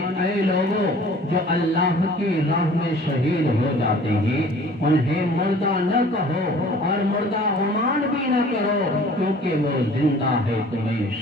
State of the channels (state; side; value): normal; both; correlation 0.49